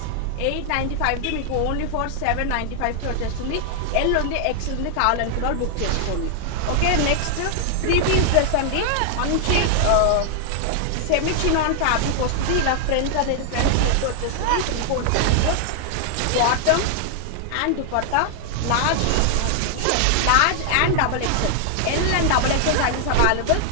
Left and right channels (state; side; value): different; both; correlation 0.00